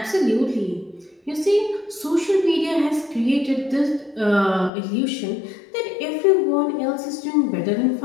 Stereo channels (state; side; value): drops out; right; at 4.7 s